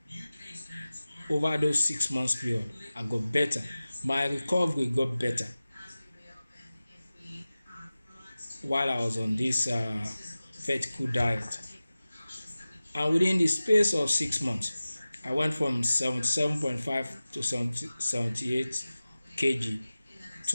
over those 6 months period. I got better. My recovery got better while I was on this vertical diet. And within the space of 6 months, I went from 77.5 to 78 kg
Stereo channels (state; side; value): inverted; both; correlation -0.97